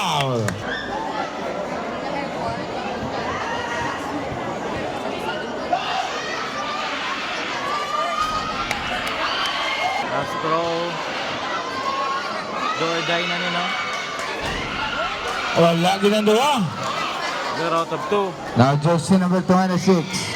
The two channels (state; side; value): identical; both; correlation 1.00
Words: Last throw. Door die na nino. Wala ginagawa. 0 out of 2. Now jersey number 26.